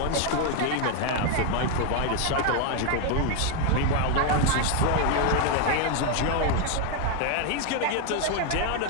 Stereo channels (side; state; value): both; different; correlation 0.01